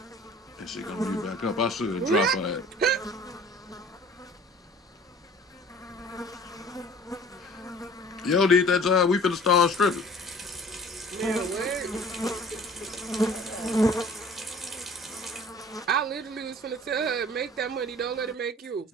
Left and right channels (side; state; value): both; normal; correlation 0.48